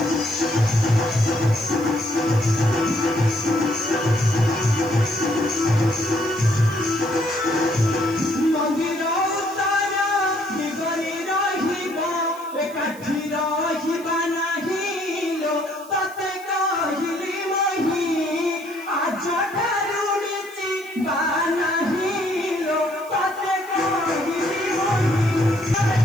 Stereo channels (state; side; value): noise; right; hiss, 21 dB below the sound